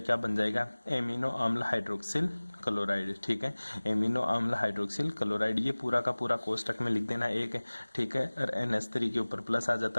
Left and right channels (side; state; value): both; inverted; correlation -1.00